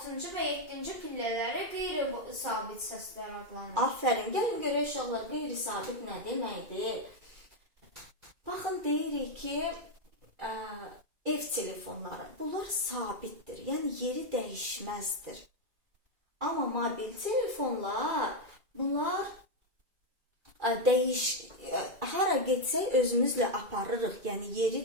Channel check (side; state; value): left; late; 2.4 ms